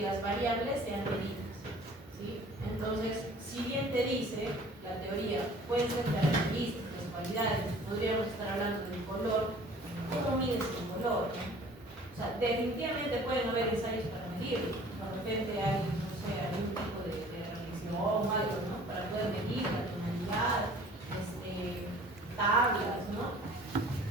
las variables sean medidas, ¿sí? Entonces, si bien te dice la teoría, pueden ser características, cualidades, podríamos estar hablando del color, ¿cómo mides el color? O sea, definitivamente pueden haber ensayos para medirlo. De repente hay, no sé, algún tipo de reflexión o algo, ¿no? Para poder medir la tonalidad, tablas, ¿no?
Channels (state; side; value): normal; both; correlation 0.49